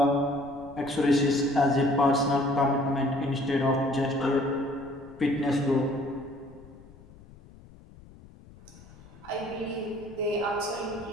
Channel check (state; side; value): noise; left; rumble, 22 dB below the sound